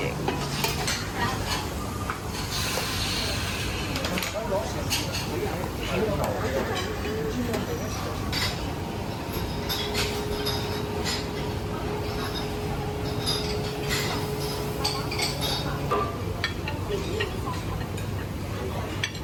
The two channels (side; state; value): both; identical; correlation 1.00